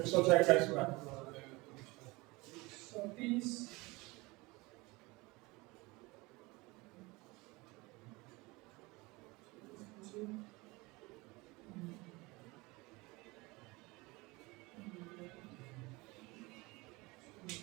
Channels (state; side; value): quieter; left; 23.7 dB